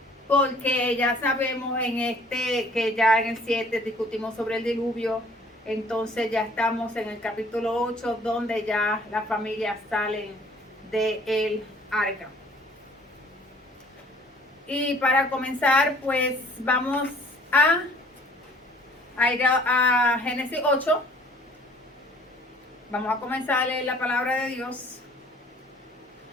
Porque ya sabemos que ya en el 7 discutimos sobre el diluvio, entonces ya estamos en el capítulo 8 donde ya las familias salen del arca. Y para comenzar, pues vamos a ir a Génesis 8. Vamos a comenzar a leer la palabra de Dios.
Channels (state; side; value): normal; both; correlation 0.55